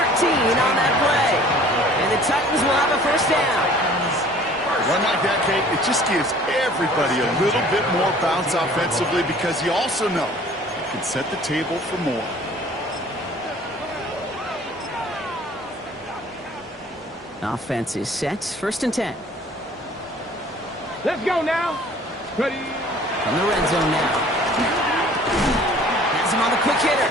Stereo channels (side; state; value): both; normal; correlation 0.51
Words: on that play. And the Titans will have a first down. Run like that, Kate, it just gives everybody a little bit more bounce offensively because you also know you can set the table for more. Offense is set. 1st and 10. Let's go now. Ready. From the red zone now. Has him on the quick hitter.